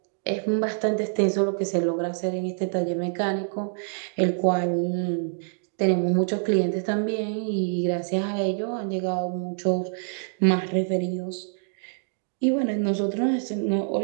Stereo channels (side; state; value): left; silent; digital silence